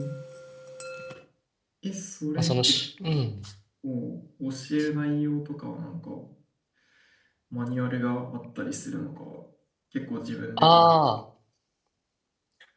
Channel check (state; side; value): identical; both; correlation 1.00